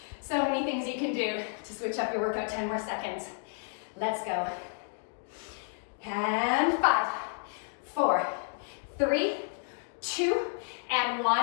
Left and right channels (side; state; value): right; silent; 57 dB below the other